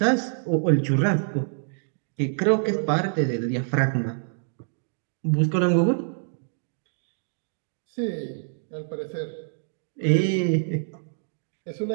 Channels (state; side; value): silent; left; digital silence